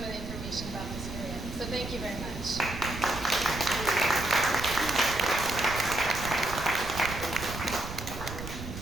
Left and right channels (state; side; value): noise; right; rumble, 9 dB below the sound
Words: of the information about this area. So thank you very much.